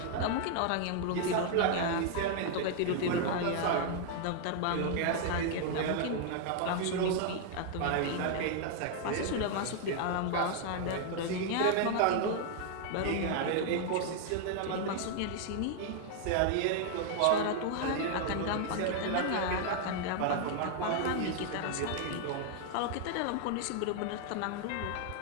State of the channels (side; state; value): both; different; correlation 0.00